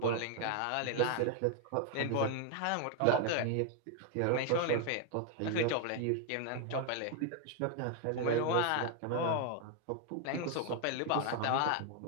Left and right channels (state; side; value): different; both; correlation 0.00